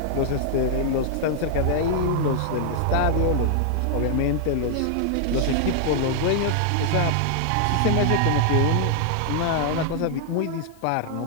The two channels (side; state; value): both; different; correlation 0.00